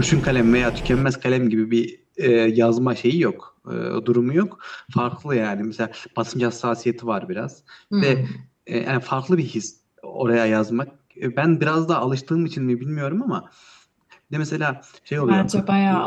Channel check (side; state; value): both; identical; correlation 1.00